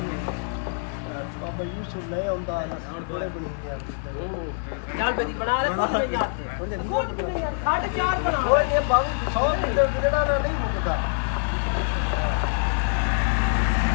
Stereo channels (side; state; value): right; silent; 55 dB below the other